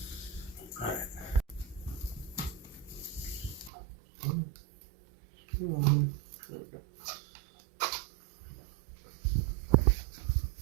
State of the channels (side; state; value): left; drops out; at 3.7 s